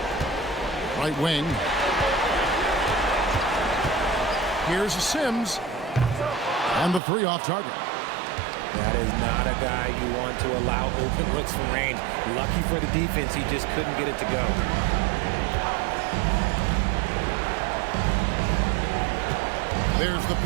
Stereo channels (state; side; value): drops out; left; at 7.0 s